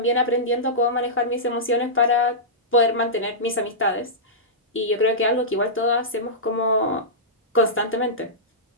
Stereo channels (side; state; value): both; normal; correlation -0.15